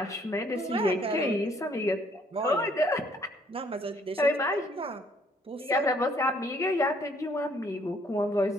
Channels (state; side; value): normal; both; correlation 0.64